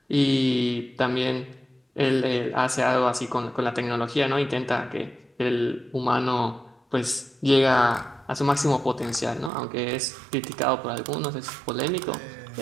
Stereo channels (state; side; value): drops out; left; at 9.5 s